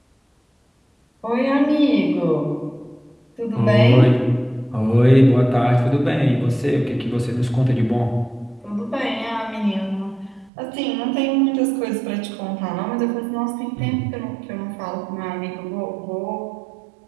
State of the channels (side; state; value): left; drops out; at 10.5 s